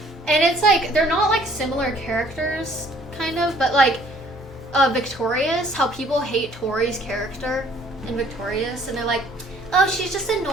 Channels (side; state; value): both; normal; correlation 0.59